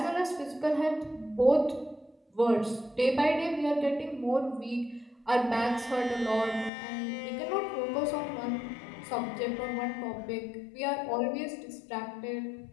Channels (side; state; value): right; drops out; at 6.7 s